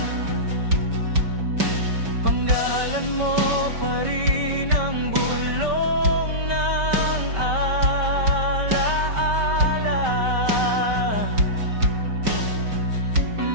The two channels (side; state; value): left; late; 5.2 ms